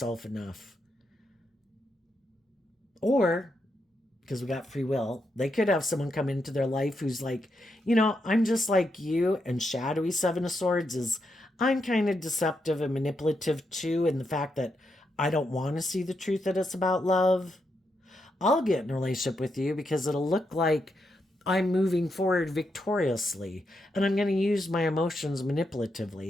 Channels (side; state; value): both; normal; correlation 0.82